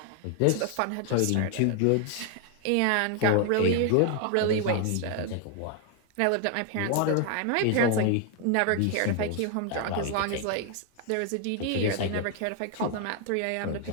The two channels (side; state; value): both; different; correlation 0.00